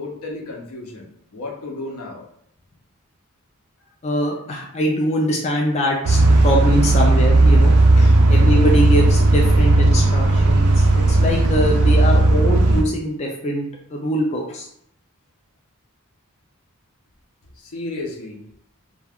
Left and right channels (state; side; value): normal; both; correlation 0.81